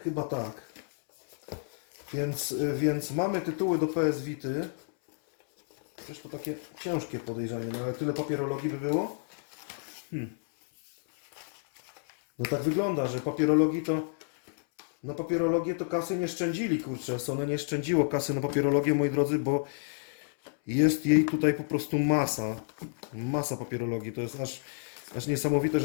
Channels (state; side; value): silent; right; 58 dB below the other